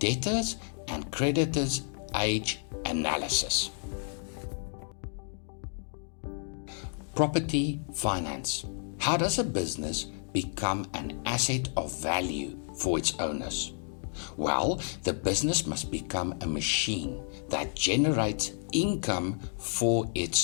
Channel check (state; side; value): silent; right; 57 dB below the other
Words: and creditors' age analysis. Property finance. How does a business become an asset of value for its owners? Well, the business must become a machine that generates income for